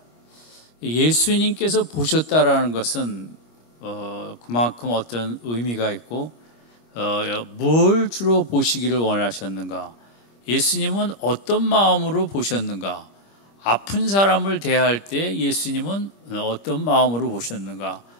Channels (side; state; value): right; late; 25 ms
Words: 예수님께서 보셨다라는 것은 그만큼 어떤 의미가 있고 뭘 주로 보시기를 원하셨는가? 예수님은 어떤 마음으로 보셨는가? 아픈 사람을 대할 때 예수님은 어떤 마음으로 보셨는가?